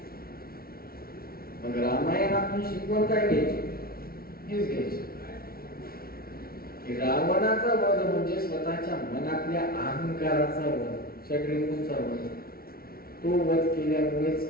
मग रामायणातून शिकवण काय घ्यायची? हेच घ्यायची की रावणाचा वध म्हणजे स्वतःच्या मनातल्या अहंकाराचा वध, षड्रिपूंचा वध. तो वध केल्यामुळेच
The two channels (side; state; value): right; late; 0.44 ms